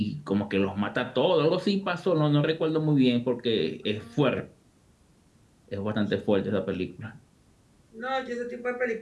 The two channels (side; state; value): both; identical; correlation 1.00